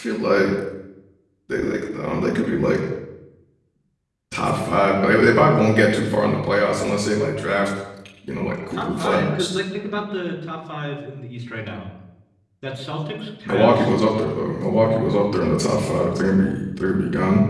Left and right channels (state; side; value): identical; both; correlation 1.00